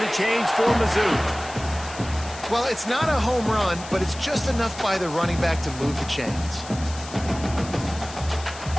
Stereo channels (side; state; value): left; noise; hiss, 15 dB below the sound